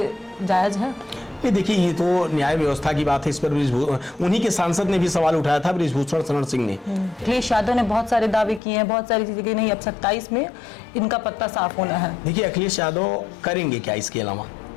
जायज है? ये देखिए, ये तो न्याय व्यवस्था की बात है। इस पर उन्हीं के सांसद ने भी सवाल उठाया था, बृजभूषण शरण सिंह ने। अखिलेश यादव ने बहुत सारे दावे किए हैं, बहुत सारी चीजें की नहीं, अब 27 में इनका पत्ता साफ होना है। देखिए, अखिलेश यादव करेंगे क्या इसके अलावा?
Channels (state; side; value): drops out; right; at 8.6 s